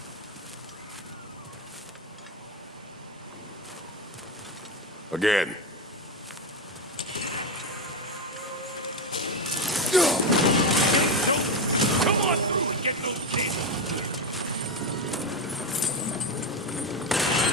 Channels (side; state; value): both; normal; correlation 0.12